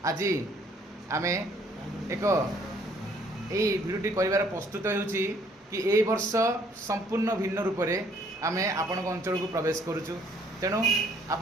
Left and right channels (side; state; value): both; normal; correlation 0.63